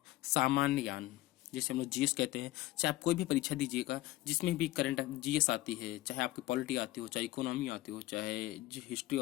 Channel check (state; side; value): quieter; right; 16.8 dB